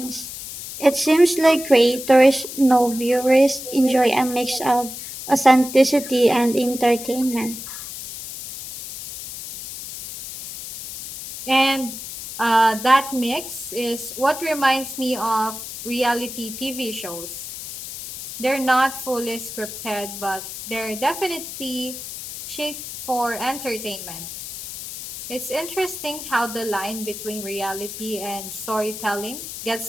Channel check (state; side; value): noise; left; hiss, 10 dB below the sound